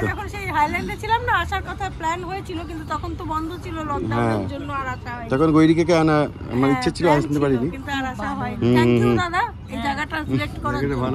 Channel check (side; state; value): both; identical; correlation 1.00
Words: যখন সেই হাইল্যান্ডে ছিলাম না, আসার কথা প্ল্যান হয়েছিল, কিন্তু তখন তো বন্ধ ছিল লকডাউনের জন্য, আর আসা হয়নি। তখন গৈরিকাকে আনা আমার ইচ্ছে ছিল, আসতে পারিনি, কিন্তু আর আসা হয়নি। থ্যাংক ইউ দাদা এই জায়গাটা সিলেক্ট করার জন্য।